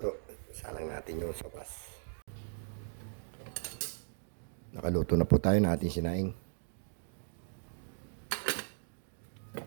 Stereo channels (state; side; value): silent; left; digital silence